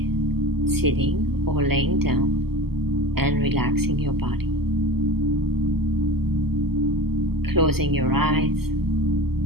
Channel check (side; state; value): left; late; 0.96 ms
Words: sitting or laying down and relaxing your body. Closing your eyes,